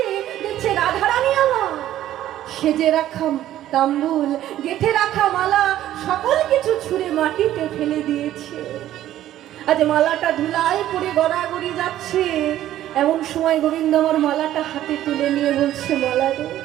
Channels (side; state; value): left; quieter; 12.9 dB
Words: দেখছে রাধারানী আমার সেজে রাখা তাম্বুল, গেথে রাখা মালা সকল কিছু ছুঁড়ে মাটিতে ফেলে দিয়েছে। আজ মালাটা ধুলায় পড়ে গড়াগড়ি যাচ্ছে। এমন সময় গোবিন্দ আমার মালাটা হাতে তুলে নিয়ে বলছে, মালা রে,